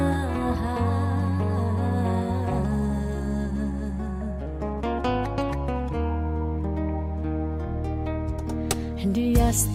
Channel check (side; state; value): both; identical; correlation 1.00